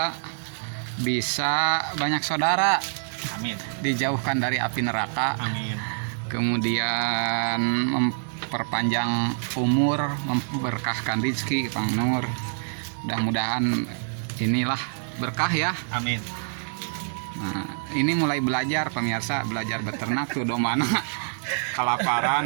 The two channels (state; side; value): silent; left; digital silence